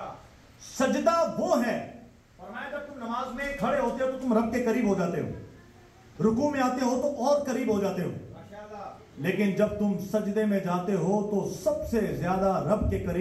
سجدہ وہ ہے فرمایا جب تم نماز میں کھڑے ہوتے ہو تو تم رب کے قریب ہو جاتے ہو, رکوع میں آتے ہو تو اور قریب ہو جاتے ہو, لیکن جب تم سجدے میں جاتے ہو تو سب سے زیادہ رب کے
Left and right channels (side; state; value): both; identical; correlation 1.00